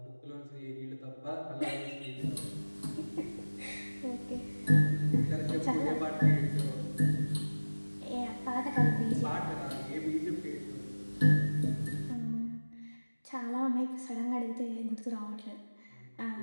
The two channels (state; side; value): inverted; both; correlation -1.00